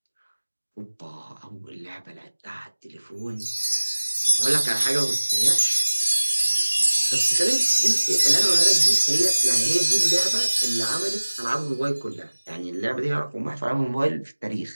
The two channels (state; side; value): inverted; both; correlation -1.00